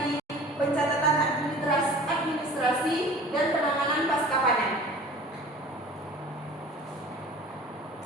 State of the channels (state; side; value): normal; both; correlation 0.43